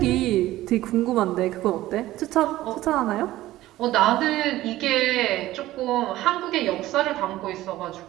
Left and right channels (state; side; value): quieter; left; 15.8 dB